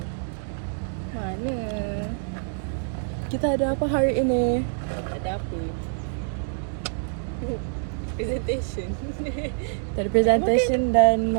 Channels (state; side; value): silent; left; digital silence